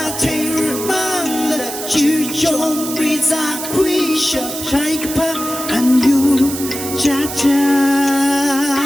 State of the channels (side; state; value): right; noise; hiss, 8 dB below the sound